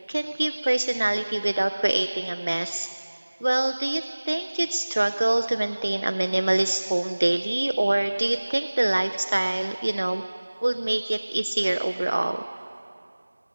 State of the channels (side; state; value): both; inverted; correlation -1.00